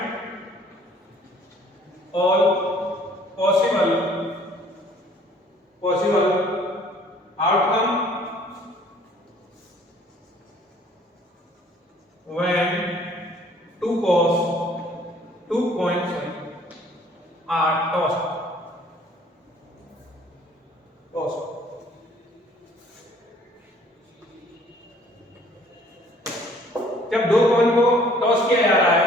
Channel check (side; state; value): both; normal; correlation 0.57